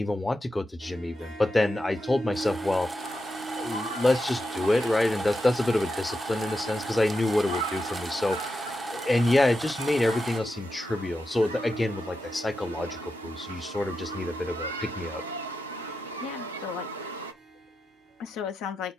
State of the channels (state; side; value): normal; both; correlation 0.88